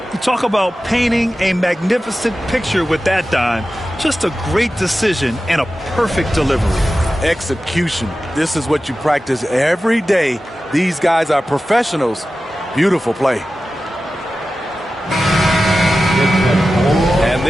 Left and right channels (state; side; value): normal; both; correlation 0.94